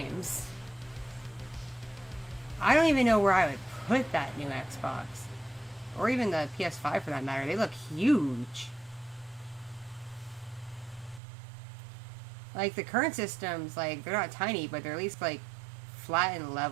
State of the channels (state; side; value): drops out; left; at 11.2 s